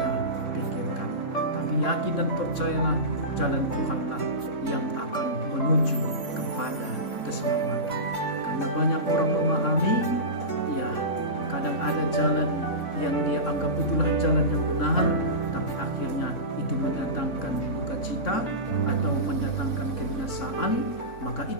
pikirkan, tapi yakin dan percayalah jalan Tuhanlah yang akan menuju kepada keselamatan. Karena banyak orang memahami, ya kadang ada jalan yang dia anggap itulah jalan yang benar, tapi akhirnya itu mendatangkan duka cita atau mendatangkan kebinasaan. Maka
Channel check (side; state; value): right; late; 3.6 ms